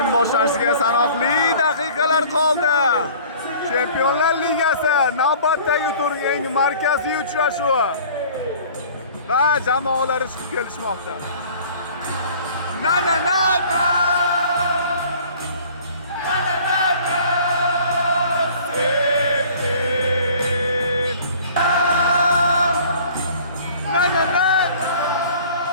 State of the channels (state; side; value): inverted; both; correlation -0.49